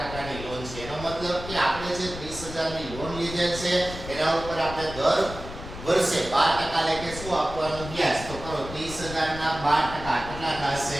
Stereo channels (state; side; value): noise; left; rumble, 11 dB below the sound